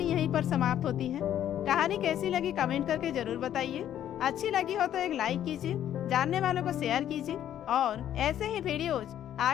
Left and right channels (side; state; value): right; quieter; 10.9 dB